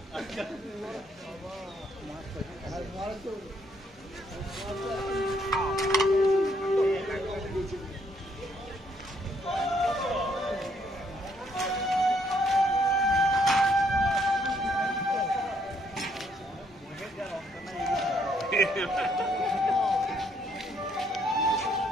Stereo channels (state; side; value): normal; both; correlation 0.70